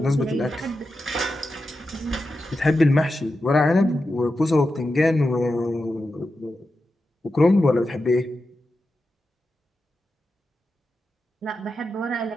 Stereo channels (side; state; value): both; normal; correlation 0.90